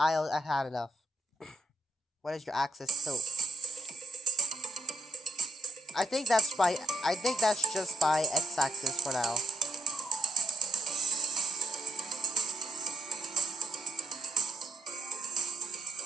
had enough. What is your axis tilt? I think that's by. I think that's just by x-axis for now.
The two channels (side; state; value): both; normal; correlation 0.79